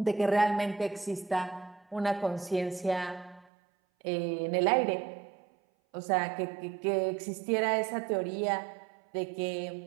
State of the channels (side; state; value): left; drops out; at 3.5 s